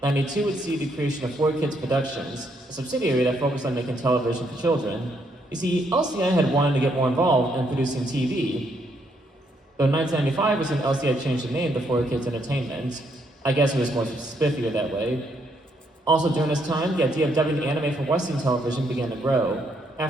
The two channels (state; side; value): normal; both; correlation 0.73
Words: 92 would see the creation of 4Kids Productions, a subsidiary that focused on making television for children. You see, LCI had wanted to get more involved in producing TV. Though 1995 was when LCI changed the name to 4Kids Entertainment. I guess it was more spiffier that way. Also during this time, the idea of dubbing anime for Western television began to grow.